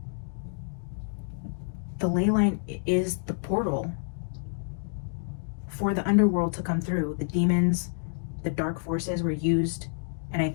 The ley line is the portal for the underworld to come through. The demons, the dark forces were used, and I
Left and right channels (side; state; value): right; silent; digital silence